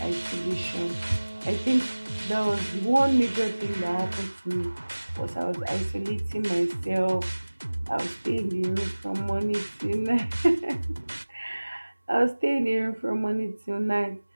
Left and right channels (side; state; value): both; inverted; correlation -1.00